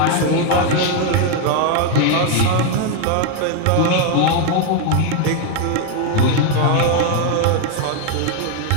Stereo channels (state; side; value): different; both; correlation 0.01